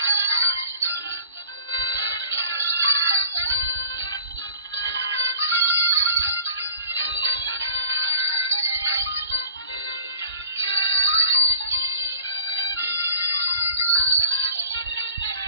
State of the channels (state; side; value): inverted; both; correlation -0.45